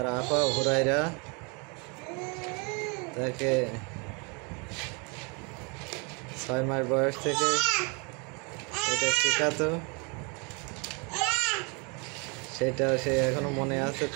আপা হুরাইরা তাকে 6 মাস বয়স থেকে এটা শেখাতো, সেটা সে এখনো মনে আছে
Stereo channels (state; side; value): quieter; left; 32.4 dB